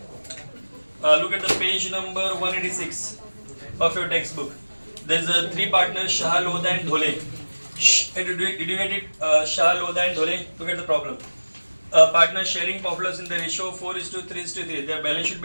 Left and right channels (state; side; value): inverted; both; correlation -1.00